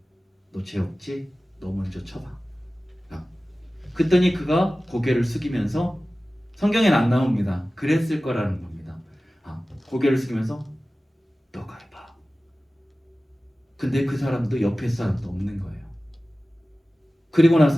너 죄 없지? 너 먼저 쳐봐. 그랬더니 그가 고개를 숙이면서, 성경엔 안 나옵니다. 그랬을 거라는 겁니다. 고개를 숙이면서 너가 해봐. 근데 그 사람도 옆에 사람도 없는 거예요. 그리고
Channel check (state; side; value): normal; both; correlation 0.96